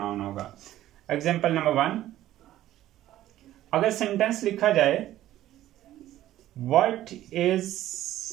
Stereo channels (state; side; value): quieter; left; 13.7 dB